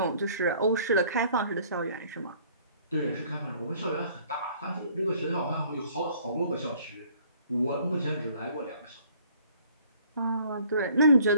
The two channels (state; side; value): inverted; both; correlation -0.58